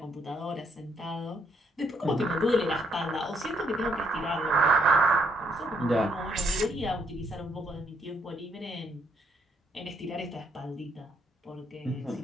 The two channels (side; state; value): both; normal; correlation 0.72